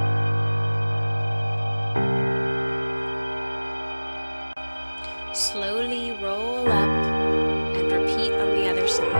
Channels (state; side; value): inverted; both; correlation -1.00